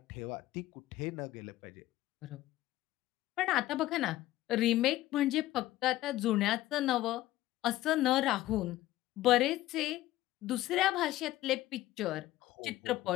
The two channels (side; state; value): right; quieter; 15.6 dB